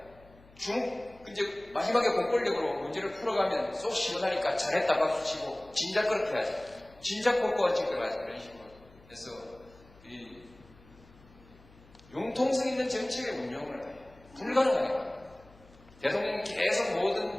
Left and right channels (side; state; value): left; noise; hum, 25 dB below the sound